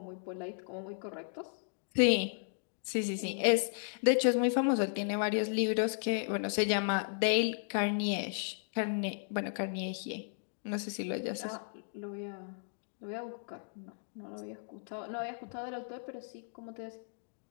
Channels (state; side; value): silent; right; digital silence